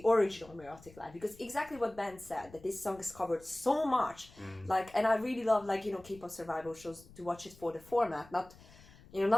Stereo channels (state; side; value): noise; left; rumble, 22 dB below the sound